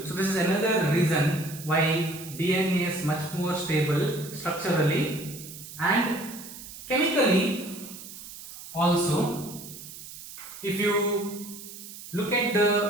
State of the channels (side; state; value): right; noise; hiss, 14 dB below the sound